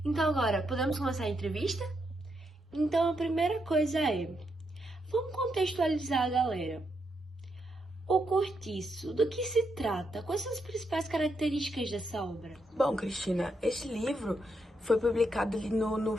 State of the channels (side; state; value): both; normal; correlation 0.80